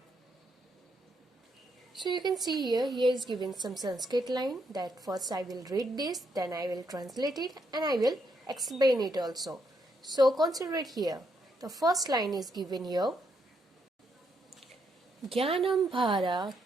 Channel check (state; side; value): normal; both; correlation 0.77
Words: So you can see here is given some Sanskrit line that first I will read this, then I will translate it and I will explain it also. So consider it here. The first line is given here. Jnanam bhara